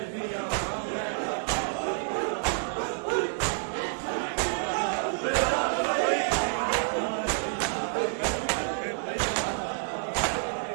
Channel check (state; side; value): silent; left; 59 dB below the other